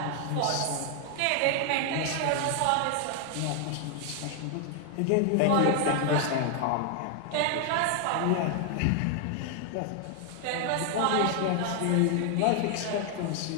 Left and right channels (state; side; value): different; both; correlation 0.00